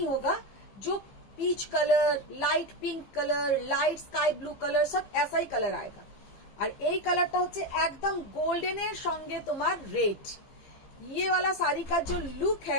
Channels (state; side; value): late; right; 15 ms